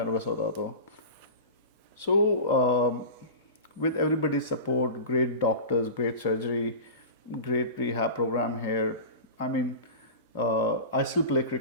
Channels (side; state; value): both; inverted; correlation -0.31